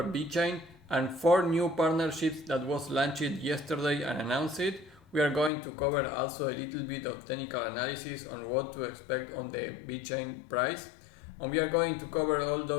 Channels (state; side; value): drops out; right; at 5.5 s